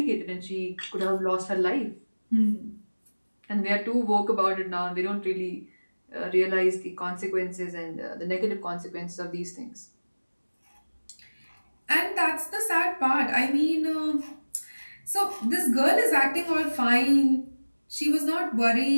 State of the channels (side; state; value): both; inverted; correlation -1.00